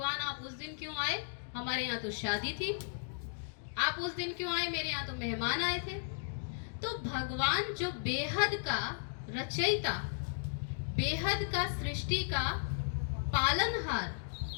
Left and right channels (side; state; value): right; silent; digital silence